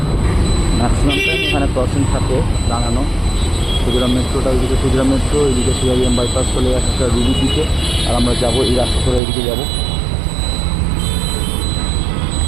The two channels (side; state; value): left; drops out; at 9.2 s